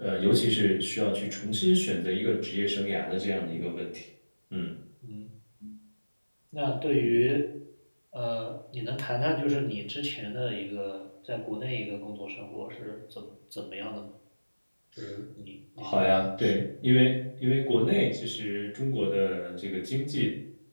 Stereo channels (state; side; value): inverted; both; correlation -1.00